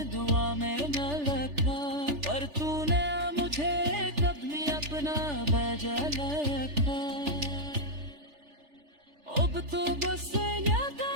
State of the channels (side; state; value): left; late; 3.4 ms